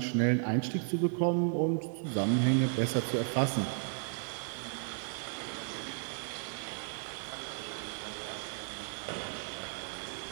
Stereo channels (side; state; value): left; silent; 55 dB below the other